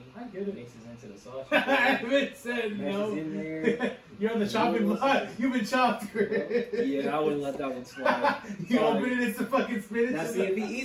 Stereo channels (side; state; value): both; identical; correlation 1.00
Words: I get it. Mixes into the sauce. I haven't said Meshes no. in there. You're on the chopping block. You've been chopped. Yeah, I wouldn't let that one slide. You Sorry. open it, it's the fucking spinach. Now, see, if he